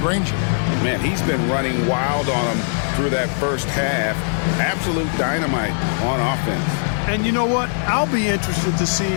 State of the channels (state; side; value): silent; right; digital silence